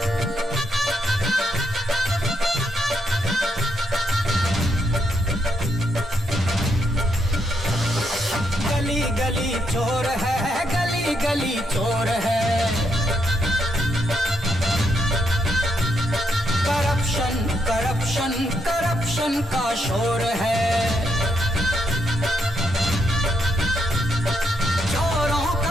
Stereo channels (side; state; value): both; normal; correlation 0.78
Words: गली गली चोर है, गली गली चोर है। करप्शन करप्शन करप्शन का शोर है। चोरों